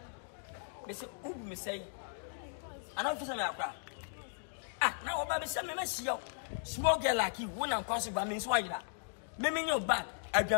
Mr. Ubu me say. I don't feel like that. Now about the same mess. Small girl like you, one unconscious by means why that. Meme your back, a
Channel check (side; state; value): right; silent; digital silence